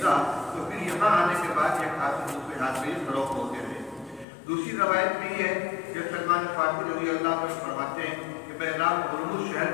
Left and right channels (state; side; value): drops out; right; at 4.2 s